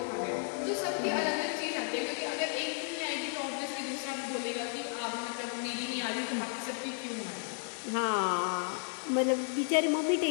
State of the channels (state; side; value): silent; right; 56 dB below the other